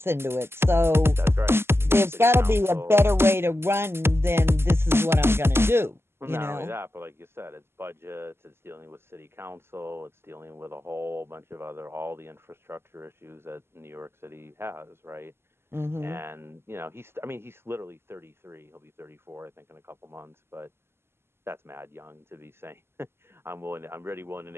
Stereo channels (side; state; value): left; late; 0.12 ms